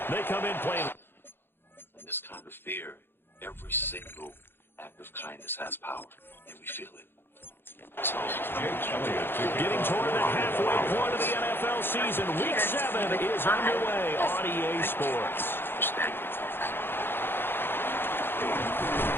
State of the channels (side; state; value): right; late; 0.10 ms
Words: they come in playing. In this kind of fear, every single act of kindness has power, and we feel it. So, getting toward the halfway point of the NFL season, Week 7 is underway on EA Sports.